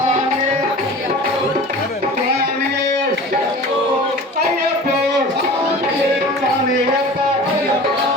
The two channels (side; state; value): both; normal; correlation 0.39